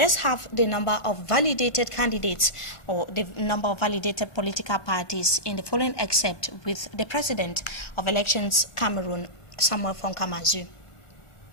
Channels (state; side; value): late; right; 1.4 ms